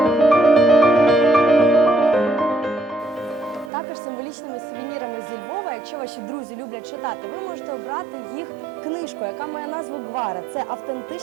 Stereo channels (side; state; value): left; drops out; at 3.7 s